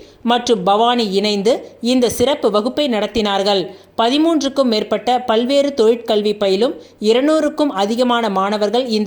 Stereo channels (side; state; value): both; identical; correlation 1.00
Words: மற்றும் பவானி இணைந்து இந்த சிறப்பு வகுப்பை நடத்தினார்கள். 13க்கும் மேற்பட்ட பல்வேறு தொழிற்கல்வி பயிலும் 200க்கும் அதிகமான மாணவர்கள்